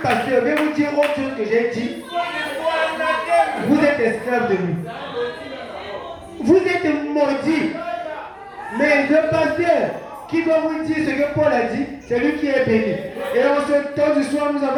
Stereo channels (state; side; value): identical; both; correlation 1.00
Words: pasteur vient vous dire autre chose que j'ai dit, vous êtes esclave de lui. Vous êtes maudit. Mais le pasteur qui va vous dire ce que Paul a dit, c'est lui qui est béni. Et en ce temps du soir, nous